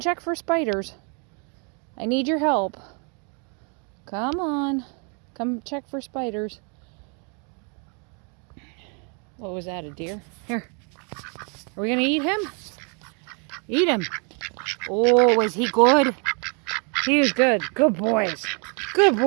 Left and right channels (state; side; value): quieter; left; 37.0 dB